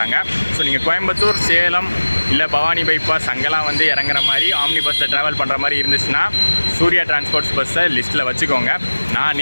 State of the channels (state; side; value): inverted; both; correlation -1.00